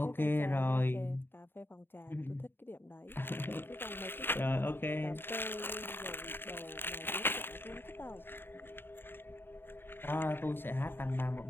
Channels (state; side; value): late; right; 0.10 ms